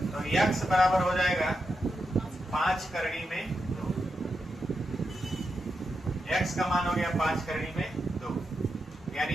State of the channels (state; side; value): normal; both; correlation 0.86